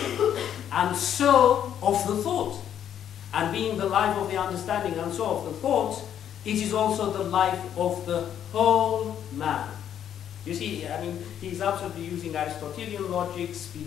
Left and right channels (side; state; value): right; quieter; 9.7 dB